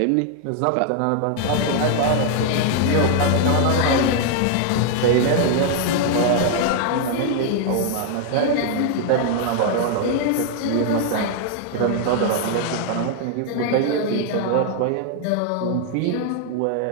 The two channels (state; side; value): different; both; correlation 0.00